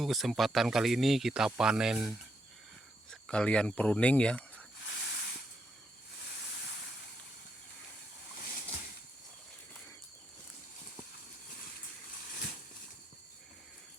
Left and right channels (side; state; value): both; normal; correlation 0.79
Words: Kesempatan kali ini kita panen sekalian pruning ya.